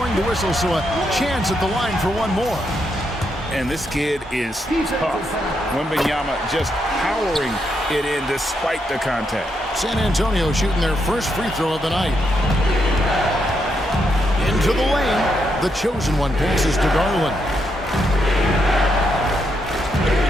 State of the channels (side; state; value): both; normal; correlation 0.80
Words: the whistle, so a chance at the line for one more. And this kid is tough. Wembanyama just powering it in despite the contact. San Antonio shooting their first free throw of the night. Into the lane. The chosen one passes to Garland.